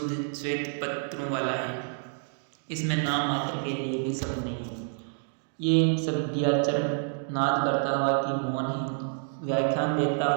श्वेत पत्रों वाला है। इसमें नाम मात्र के लिए भी शब्द नहीं है। ये सभ्याचरण नाद करता हुआ कि मौन है, व्याख्यान देता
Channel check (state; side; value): silent; left; 59 dB below the other